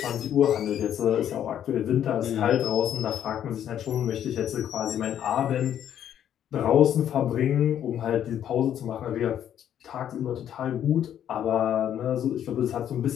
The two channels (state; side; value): quieter; right; 10.1 dB